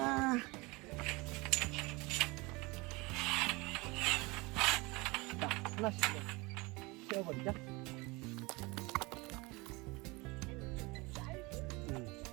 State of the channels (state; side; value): quieter; left; 24.6 dB